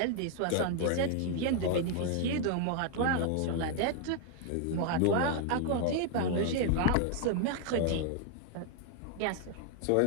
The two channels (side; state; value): both; different; correlation 0.00